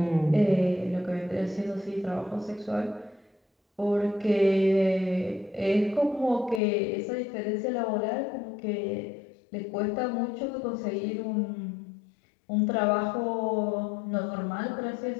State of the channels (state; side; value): drops out; right; at 6.6 s